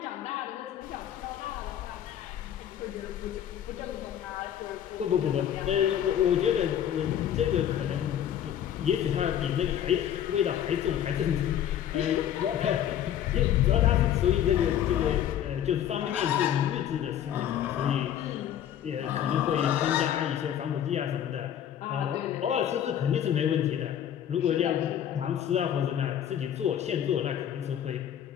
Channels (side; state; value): right; quieter; 10.3 dB